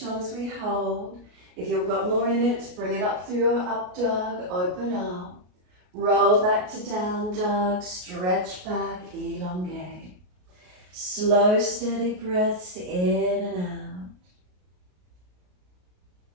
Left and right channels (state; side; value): late; left; 33 ms